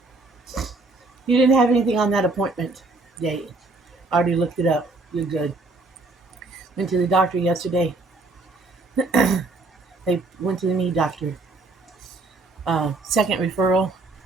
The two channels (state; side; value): quieter; left; 3.3 dB